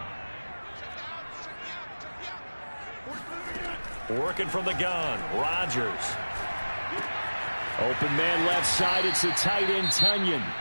Working from the gun, Rodgers. Open man left side, it's the tight end, Tunyon.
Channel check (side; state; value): both; inverted; correlation -1.00